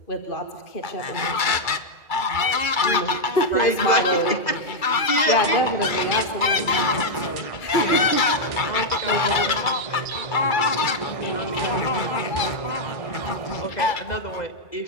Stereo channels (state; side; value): late; right; 2.3 ms